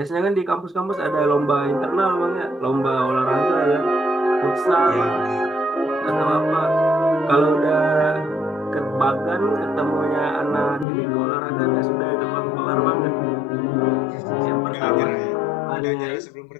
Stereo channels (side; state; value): right; drops out; at 10.9 s